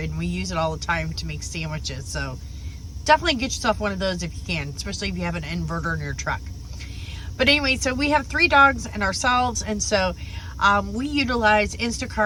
and we use it all the time to make sandwiches. So definitely get yourself one of those if you can, especially if you have an inverter in your truck. But anyway, so we have 3 dogs and ourselves, and so we utilize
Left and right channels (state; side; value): identical; both; correlation 1.00